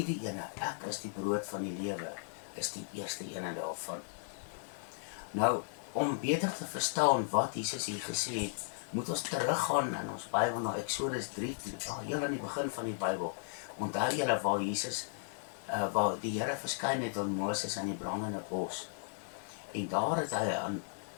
ene, ek is die brood van die lewe, is die eerste ene daarvan. Nou, om beter te verstaan wat Jesus hier gesê het, moet ons teruggaan in ons Bybel na Exodus 3 toe, heel aan die begin van die Bybel. Onthou julle waar Jesus, waar die Here verskyn het aan Moses in die brandende bos. En daar het hy aan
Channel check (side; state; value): right; silent; digital silence